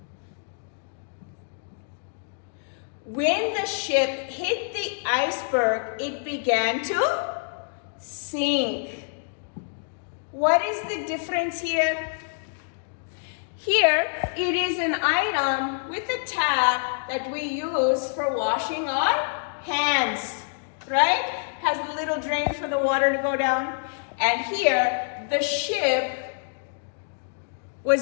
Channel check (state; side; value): silent; right; digital silence